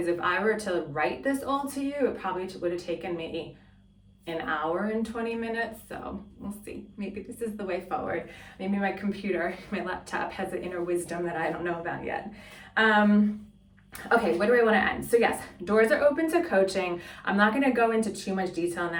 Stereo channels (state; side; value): identical; both; correlation 1.00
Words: if I were to write this all to you, it probably would have taken me an hour and 20 minutes. So we'll see. Maybe this is the way forward. Maybe my computer, my laptop has an inner wisdom that I don't know about yet. Okay, what do I want to end? So yes, doors are open to coaching. I'm not going to go into too much detail on